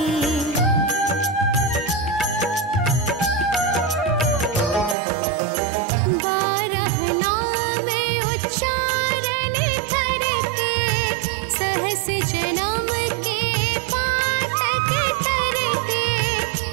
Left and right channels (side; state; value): left; drops out; at 5.0 s